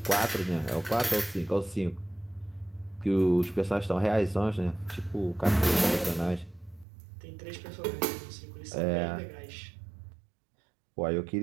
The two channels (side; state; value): left; drops out; at 6.9 s